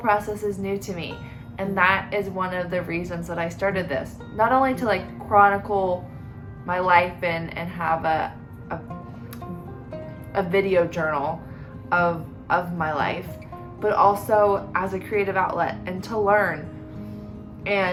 is new to me. And that is one of the reasons that I started this. Not only to like chronicle my life and have a video journal of my life, but also as a creative outlet and to learn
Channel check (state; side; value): identical; both; correlation 1.00